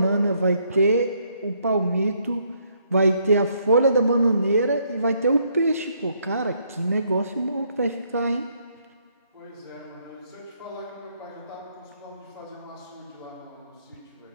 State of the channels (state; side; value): inverted; both; correlation -0.71